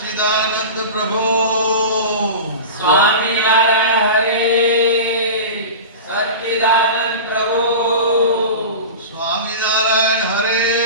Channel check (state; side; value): inverted; both; correlation -0.30